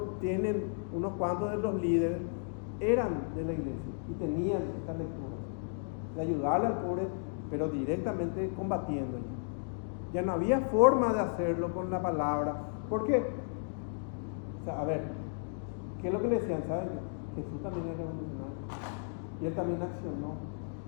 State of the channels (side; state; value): right; silent; digital silence